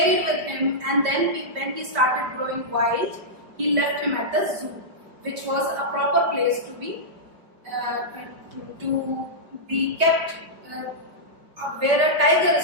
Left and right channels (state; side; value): late; left; 5.1 ms